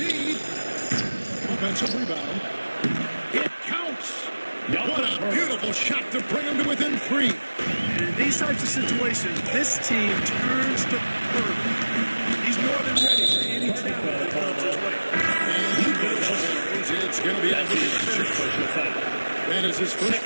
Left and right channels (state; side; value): inverted; both; correlation -1.00